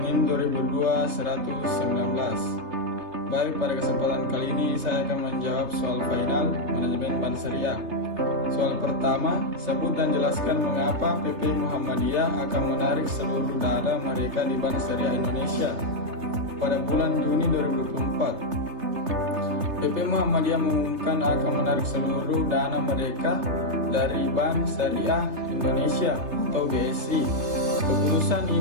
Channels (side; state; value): left; late; 3.3 ms